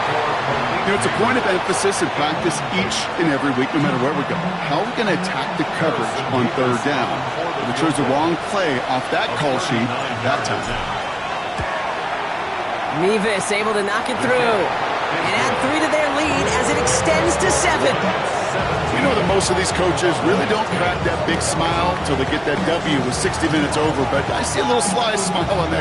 You know, it's a point of emphasis in practice each and every week, no matter where we go. How are we going to attack the coverage on 3rd down? We chose the wrong play off that call sheet that time. Mevis able to knock it through and add 3 to their lead as it extends to 7. You know that most of these coaches really don't crack that big smile until they get that W with 60 minutes over, but I see a little sly smile on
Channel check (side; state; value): both; identical; correlation 1.00